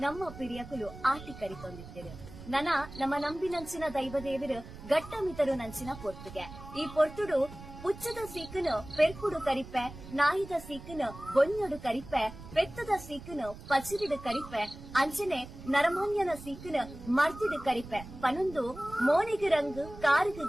ನಮ್ಮ ಪಿರಿಯಕುಲು ಆಟಿ ಕರಿತೊಂದಿತ್ತಿರು ನಮ್ಮ ನಂಬಿನಂಚಿನ ದೈವದೇವರು ಗಟ್ಟಮಿತರು ನಂಚಿನ ಪೊರ್ತುಗೆ ಈ ಪೊರ್ತುಡು ಪುಚ್ಚದ ಸೀಕನು ಪೆರ್ಕುಡು ಕರಿಪೆ ನಾಯಿದ ಸೀಕನು ಬೊನ್ನೊಡು ಕರಿಪೆ ಪೆತ್ತದ ಸೀಕನು ಪಚಿರಿಡು ಕರಿಪೆ ಅಂಚನೆ ನರಮಾನ್ಯನ ಸೀಕನು ಮರ್ತಿಡು ಕರಿಪೆ ಪನೊಂದು ಮೋನಿಗೆ ರಂಗು ಕಾರುಗು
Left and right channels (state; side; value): noise; right; rumble, 15 dB below the sound